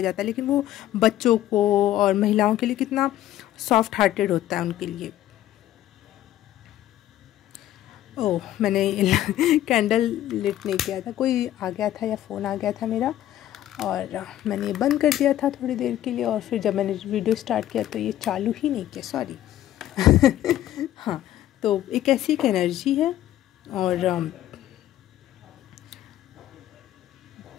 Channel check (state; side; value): quieter; right; 13.1 dB